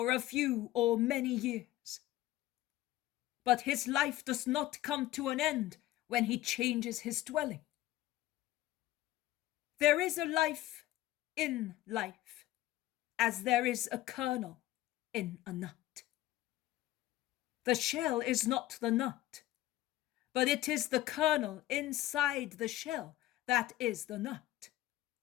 a few or many years, but his life does not come to an end when he changes his dwelling. There is a life in life, as there is a kernel in a nut. The shell is not the nut, but it is the kernel inside the shell that is the nut.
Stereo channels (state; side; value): quieter; right; 15.5 dB